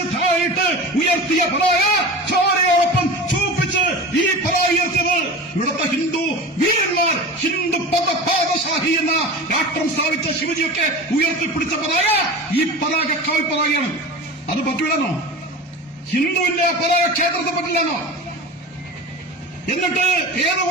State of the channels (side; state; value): both; normal; correlation 0.32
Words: താഴിട്ട് ഉയർത്തിയ പതാക ചോരയോടൊപ്പം ചൂപ്പിച്ച് ഈ പതാക ഉയർത്തിയത് ഇവിടുത്തെ ഹിന്ദു വീരന്മാർ, ഹിന്ദു പാദശാഹി എന്ന രാഷ്ട്രം സ്ഥാപിച്ച ശിവജിയൊക്കെ ഉയർത്തിപ്പിടിച്ച പതാക ഈ പതാക കാവിപ്പതാകയാണ്. അത് പറ്റൂലെന്നോ? ഹിന്ദുവിന്റെ പതാക ക്ഷേത്രത്തെ പറ്റില്ലെന്നോ? എന്നിട്ട് ഏത്